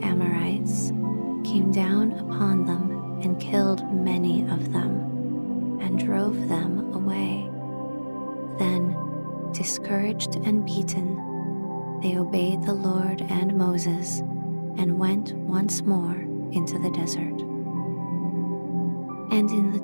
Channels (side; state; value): both; inverted; correlation -1.00